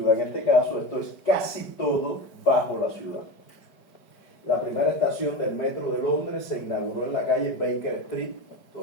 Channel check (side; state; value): right; late; 5.0 ms